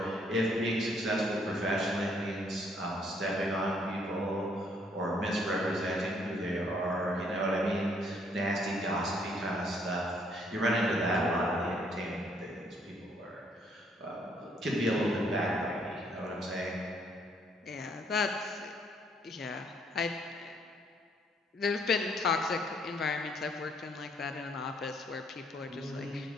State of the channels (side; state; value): both; normal; correlation 0.67